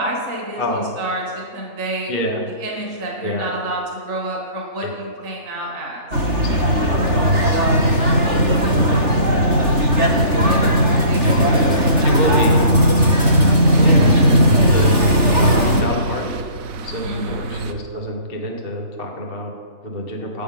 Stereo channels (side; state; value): left; late; 3.4 ms